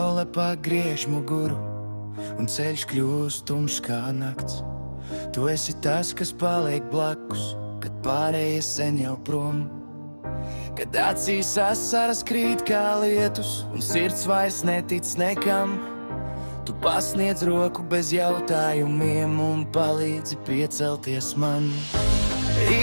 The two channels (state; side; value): inverted; both; correlation -1.00